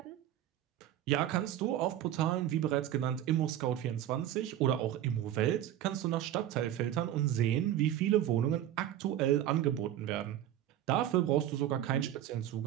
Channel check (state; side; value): quieter; left; 11.9 dB